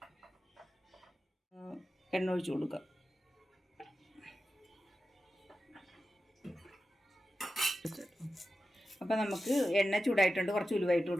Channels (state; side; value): normal; both; correlation 0.92